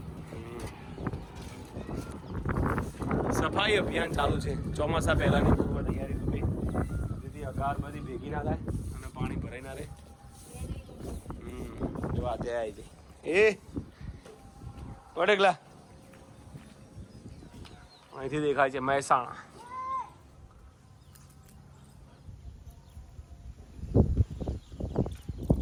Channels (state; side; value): identical; both; correlation 1.00